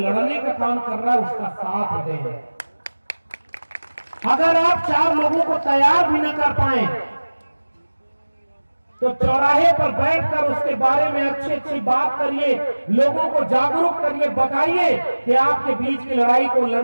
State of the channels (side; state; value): both; inverted; correlation -1.00